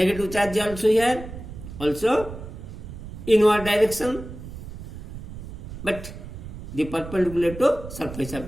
charge also, here also inward direction, but the perpendicular to surface of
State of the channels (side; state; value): right; noise; rumble, 11 dB below the sound